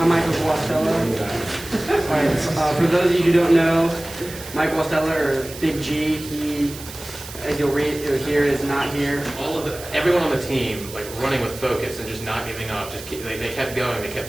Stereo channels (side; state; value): right; noise; hiss, 14 dB below the sound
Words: Michael Guastella. For those of you who don't know, Mike Guastella, or Big G, he, as you'll read or hear, is not here. Everyone on the team, like running with focus and just not giving up. They kept going. They